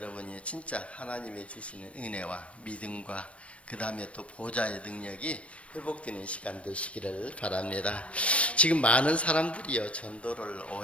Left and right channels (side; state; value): right; late; 0.062 ms